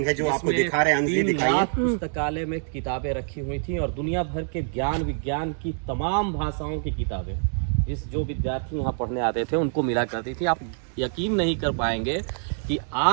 है जो आपको दिखा रहे हैं। 3 लाख पुस्तकालय में किताबें रखी हुई थी और दुनिया भर के ज्ञान विज्ञान की तमाम भाषाओं की किताबें जो विद्यार्थी यहाँ पढ़ने आते थे उनको मिला करती थी। आप यकीन नहीं कर पाएंगे कि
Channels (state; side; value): silent; left; 56 dB below the other